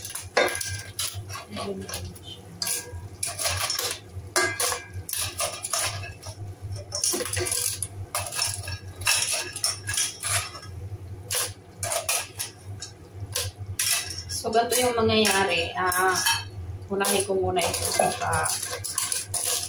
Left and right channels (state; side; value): identical; both; correlation 1.00